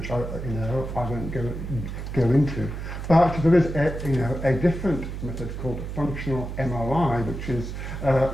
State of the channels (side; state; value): right; noise; hum, 7 dB below the sound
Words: I won't go into. But there is a different method called functional MRI,